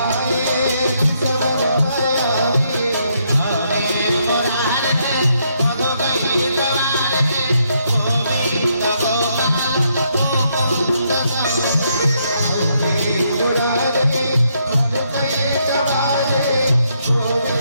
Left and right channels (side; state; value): both; inverted; correlation -0.75